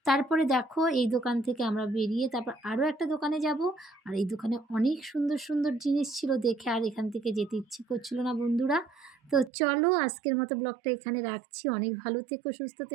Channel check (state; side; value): drops out; left; at 9.5 s